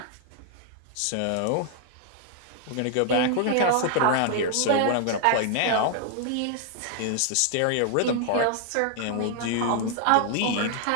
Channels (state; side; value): different; both; correlation 0.00